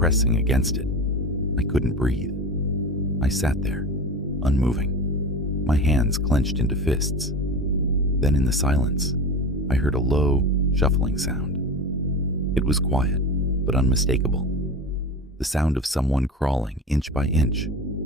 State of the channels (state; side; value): normal; both; correlation 0.30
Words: against it. I couldn't breathe. I sat there, unmoving, my hands clenched into fists. Then in the silence, I heard a low, shuffling sound. It was quiet, but unmistakable. The sound of someone crawling inch by inch